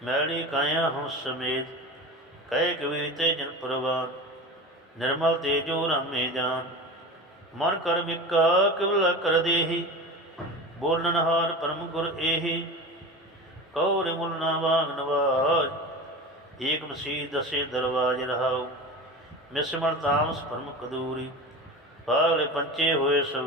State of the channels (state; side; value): normal; both; correlation 0.30